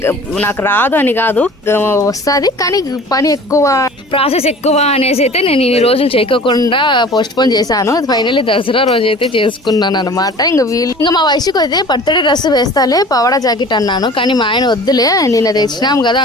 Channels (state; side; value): normal; both; correlation 0.43